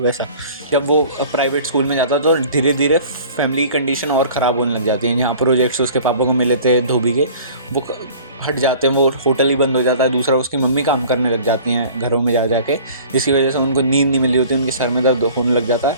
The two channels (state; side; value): inverted; both; correlation -0.46